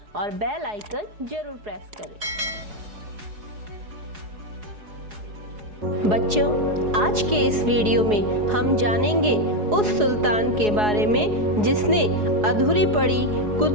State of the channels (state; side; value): late; left; 4.8 ms